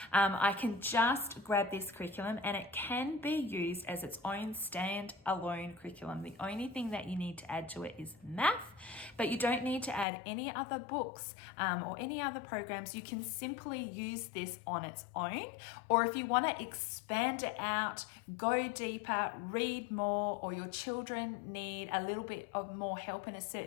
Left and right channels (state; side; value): drops out; right; at 10.1 s